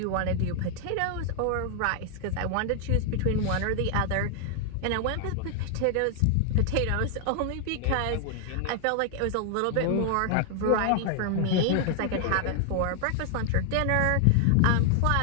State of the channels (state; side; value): different; both; correlation 0.00